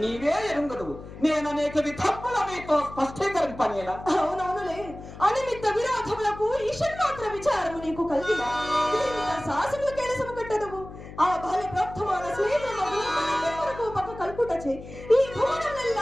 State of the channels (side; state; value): left; noise; hum, 14 dB below the sound